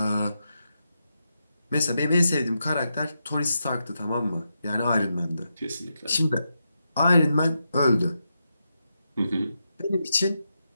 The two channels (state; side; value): inverted; both; correlation -0.86